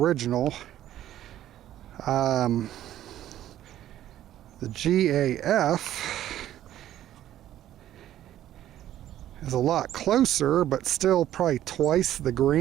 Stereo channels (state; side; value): quieter; left; 12.5 dB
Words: The GAF is a lot closer, but still probably twice the